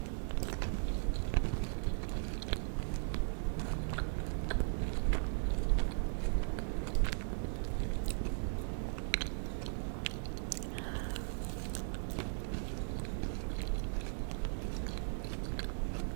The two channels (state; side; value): silent; left; digital silence